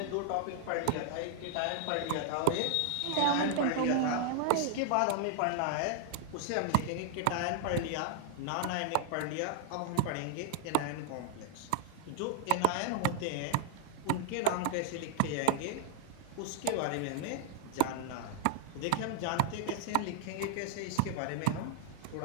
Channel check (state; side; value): different; both; correlation 0.00